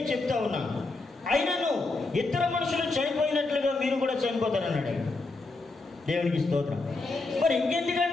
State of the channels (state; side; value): quieter; right; 3.4 dB